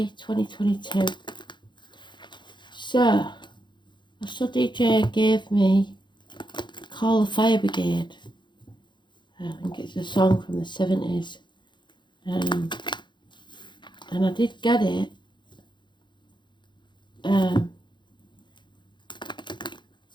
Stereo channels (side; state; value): right; late; 0.22 ms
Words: 2022. So, a study DJ gave me Call the Fire Brigade. I think it's a song from the 70s. And I did get it. The